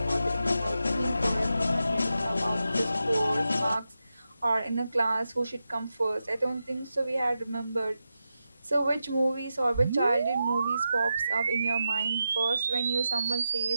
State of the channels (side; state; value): both; inverted; correlation -0.89